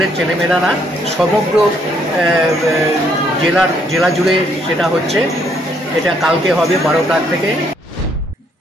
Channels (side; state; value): both; normal; correlation 0.70